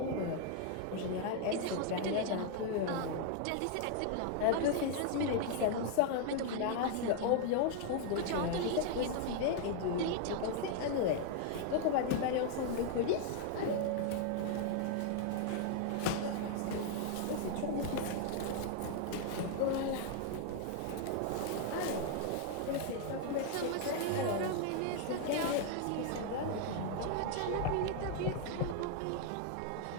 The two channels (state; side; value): different; both; correlation 0.00